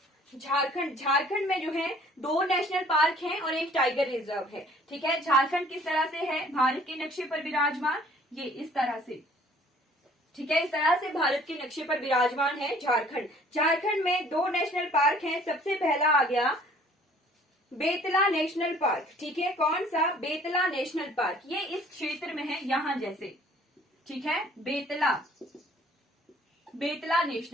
झारखंड में जो है 2 नेशनल पार्क हैं और एक टाइगर रिजर्व है। ठीक है, झारखंड किस तरह से है? भारत के नक्शे पर विराजमान, ये इस तरह से। ठीक है। इस तरह से भारत के नक्शे पर विराजमान है झारखंड। झारखंड में 2 नेशनल पार्क हैं। सबसे पहला आ गया बेतला नेशनल पार्क। ठीक है, कौन सा? Betla national park. ये इस क्षेत्र में है, यहां जैसे। ठीक है, बेतला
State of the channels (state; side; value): normal; both; correlation 0.55